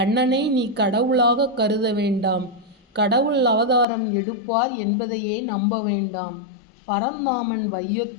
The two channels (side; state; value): right; drops out; at 3.9 s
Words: நீ கடவுளாக கருத வேண்டாம், கடவுள் அவதாரம் எடுப்பார் என்பதையே நம்ப வேண்டாம். பரந்தாமன்